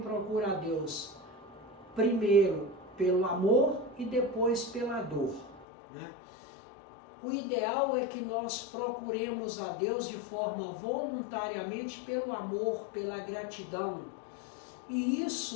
a Deus primeiro pelo amor e depois pela dor, né? O ideal é que nós procuremos a Deus de forma voluntariamente pelo amor, pela gratidão. E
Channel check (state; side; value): drops out; right; at 5.7 s